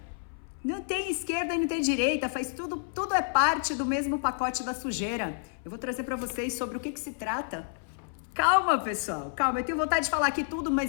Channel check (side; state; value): right; silent; 58 dB below the other